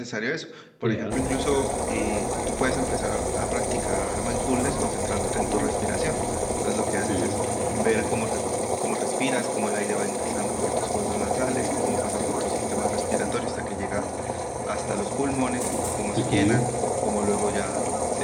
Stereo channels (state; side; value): identical; both; correlation 1.00